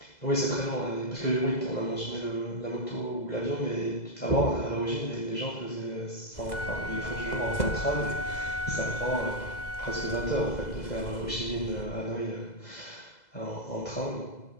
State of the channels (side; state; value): right; late; 2.0 ms